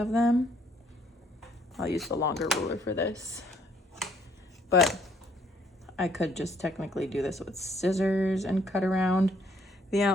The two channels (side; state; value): both; normal; correlation 0.65